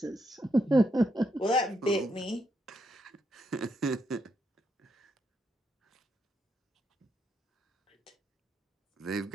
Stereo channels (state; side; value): normal; both; correlation 0.79